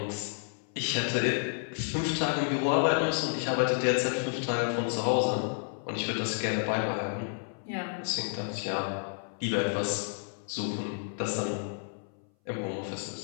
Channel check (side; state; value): right; silent; 57 dB below the other